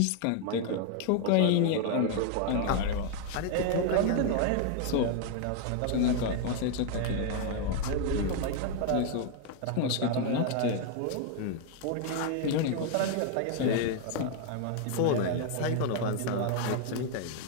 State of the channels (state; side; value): different; both; correlation 0.00